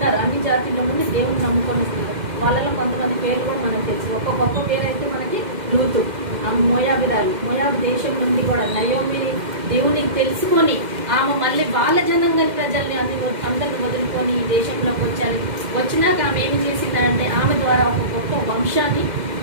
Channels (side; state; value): left; late; 2.1 ms